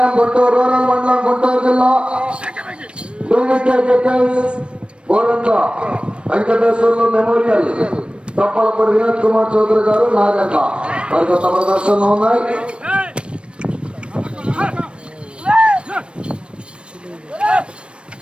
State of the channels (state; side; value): late; left; 0.058 ms